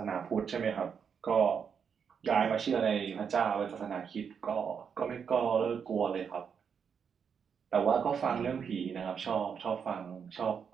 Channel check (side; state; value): left; quieter; 6.9 dB